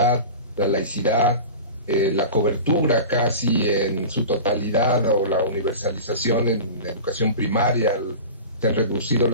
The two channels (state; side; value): inverted; both; correlation -0.33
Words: la laicidad, la cobertura casi en su totalidad o la universalización en educación primaria, se han reducido